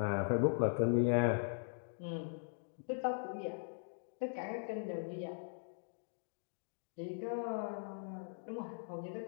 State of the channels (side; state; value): right; silent; digital silence